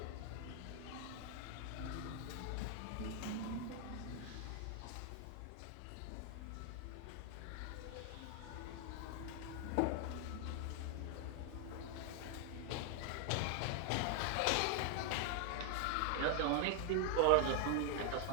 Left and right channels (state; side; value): different; both; correlation 0.00